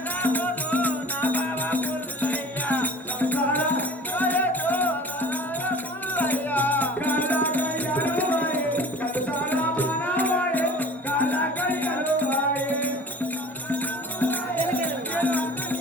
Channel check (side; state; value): both; normal; correlation 0.44